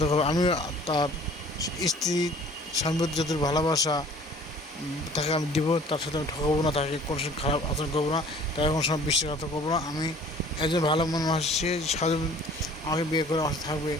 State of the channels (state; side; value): normal; both; correlation 0.51